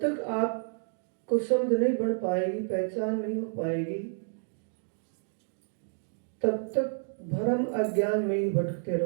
आपको समझ नहीं बढ़ पाएगी, पहचान नहीं हो पाएगी, तब तक भ्रम अज्ञान में ही भटकते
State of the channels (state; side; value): silent; left; digital silence